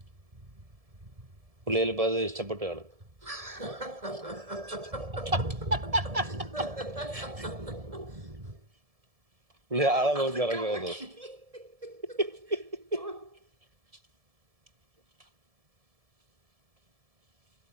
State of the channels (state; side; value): late; left; 1.7 ms